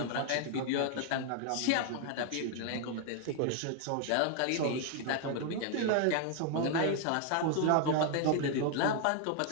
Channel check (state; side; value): different; both; correlation 0.00